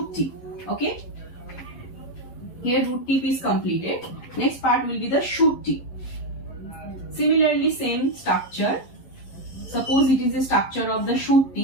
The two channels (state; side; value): late; right; 11 ms